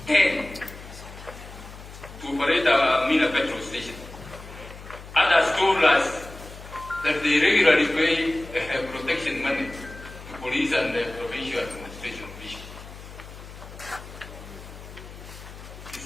10 to operate a Mina petrol station. Others told us that they regularly pay protection money to police and the provincial administration officials. Is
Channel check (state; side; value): noise; left; hum, 15 dB below the sound